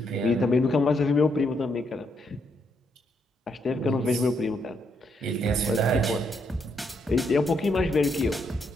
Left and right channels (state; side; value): normal; both; correlation 0.76